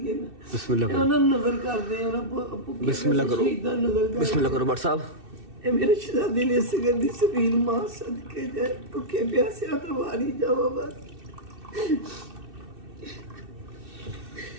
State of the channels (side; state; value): left; late; 2.6 ms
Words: ਨਾ। ਬਿਸਮਿਲ੍ਲਾ ਕਰੋ, ਉਹਨਾਂ ਨੂੰ ਨਜ਼ਰ ਕਰਦੇ, ਉਹਨਾਂ ਬਿਸਮਿਲ੍ਲਾ ਕਰੋ, ਸ਼ਹੀਦਾਂ ਨਜ਼ਰ ਕਰਦੇ। ਬਿਸਮਿਲ੍ਲਾ ਕਰੋ ਬਟ ਸਾਹਿਬ। ਇਹ ਮੇਰੇ ਸ਼ਹਿਜ਼ਾਦੇ ਨੇ ਇਸ ਗੱਲ ਦੀ ਸਬੀਲ ਮਾਂ ਸਦਕੇ ਜਾਏ ਭੁੱਖੇ ਪਿਆਸਿਆਂ ਤੋਂ ਵਾਰੀ ਜਾਵਾ ਬਸ